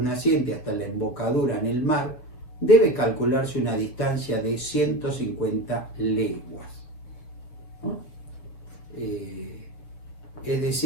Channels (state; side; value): late; right; 6.7 ms